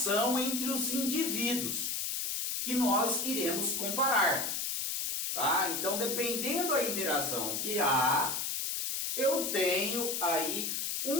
entre os indivíduos que nós iremos comparar. Tá? Então, dependendo da interação que há, eu tenho aí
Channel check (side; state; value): left; noise; hiss, 1 dB below the sound